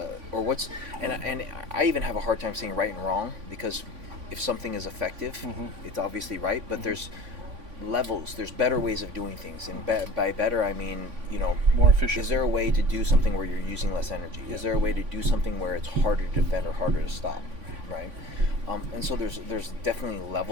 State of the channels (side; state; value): left; late; 3.5 ms